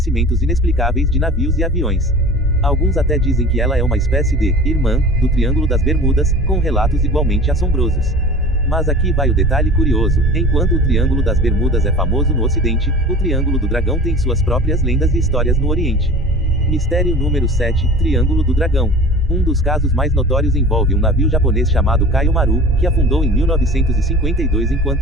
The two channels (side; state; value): both; normal; correlation 0.38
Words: inexplicáveis de navios e aviões. Alguns até dizem que ela é uma espécie de irmã do Triângulo das Bermudas, com relatos igualmente assombrosos. Mas aqui vai o detalhe curioso: enquanto o Triângulo das Bermudas é famoso no Ocidente, o Triângulo do Dragão tem suas próprias lendas e histórias no Oriente. Mistério número 7, Triângulo do Dragão. Um dos casos mais notórios envolve um navio japonês chamado Kaio Maru, que afundou em 1952